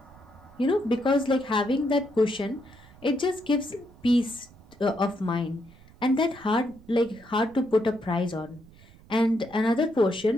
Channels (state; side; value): noise; right; rumble, 24 dB below the sound